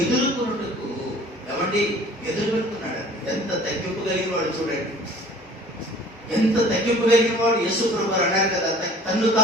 ఎదుర్కొన్నట్టుకు ఎదురు పెట్టుకున్నాడు. ఎంత తగ్గింపు కలిగిన వాడు చూడండి, ఎంత తగ్గింపు కలిగిన వాడు. యేసు ప్రభువు అన్నారు కదా, తన్ను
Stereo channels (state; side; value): normal; both; correlation 0.49